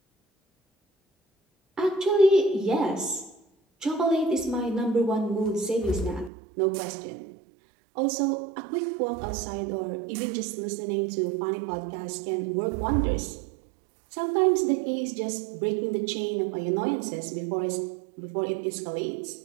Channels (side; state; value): left; drops out; at 6.3 s